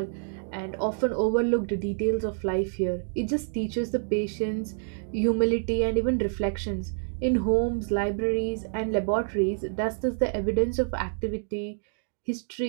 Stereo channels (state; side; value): silent; left; digital silence